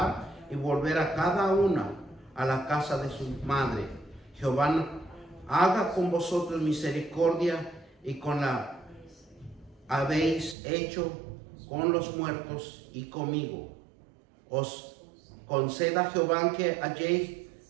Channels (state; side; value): drops out; left; at 10.6 s